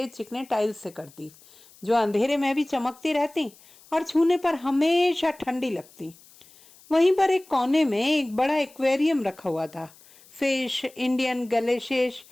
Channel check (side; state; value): left; noise; hiss, 26 dB below the sound